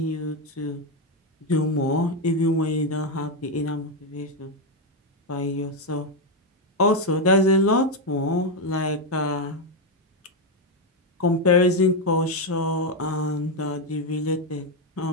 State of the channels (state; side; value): normal; both; correlation 0.05